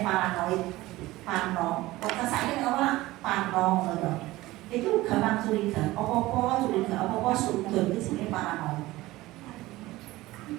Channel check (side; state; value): left; quieter; 18.3 dB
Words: paranoid, parno. Kok kesane ora parno ngono. Itu gampang curiga. Apa-apa curiga, apa-apa sudut itu jenenge paranoid.